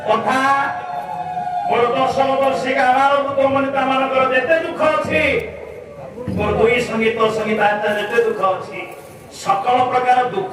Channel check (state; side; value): identical; both; correlation 1.00